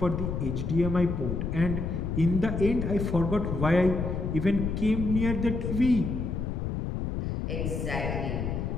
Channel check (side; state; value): left; noise; rumble, 2 dB below the sound